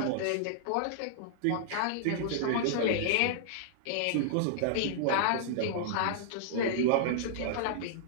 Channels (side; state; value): both; different; correlation -0.01